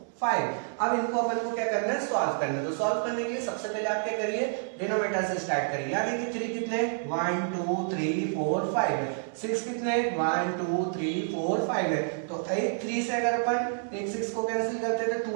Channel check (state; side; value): silent; left; 59 dB below the other